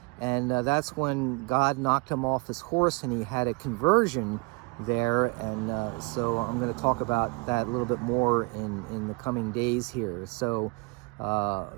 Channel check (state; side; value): quieter; left; 28.8 dB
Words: and that's when God knocked him off his horse, and he had a conversion there. And so I'm going to talk about that a little bit more in the coming days here. So